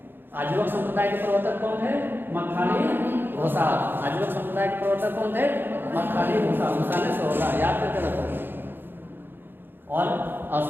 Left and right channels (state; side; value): late; left; 0.099 ms